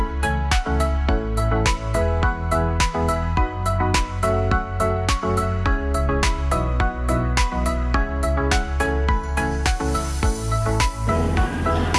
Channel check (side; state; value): both; identical; correlation 1.00